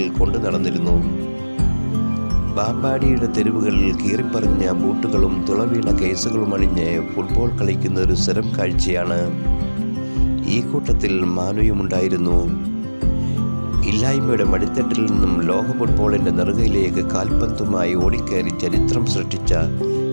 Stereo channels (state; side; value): inverted; both; correlation -1.00